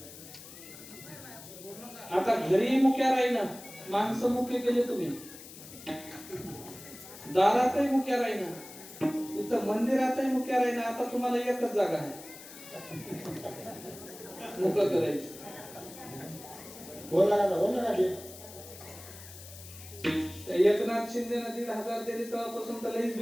आता घरी मुक्या राहीना माणसं मुके केले तुम्ही दारातही मुक्या राहीना इथं मंदिरातही मुक्या राहीना आता तुम्हाला एकच जागा आहे मुक करायची बोला एकनाथ शिंदे 1,500 दिली तेव्हापासून तर लईच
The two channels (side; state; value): left; noise; hiss, 16 dB below the sound